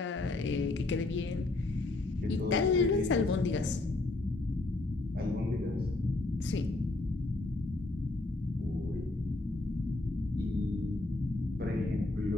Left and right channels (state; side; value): quieter; right; 3.0 dB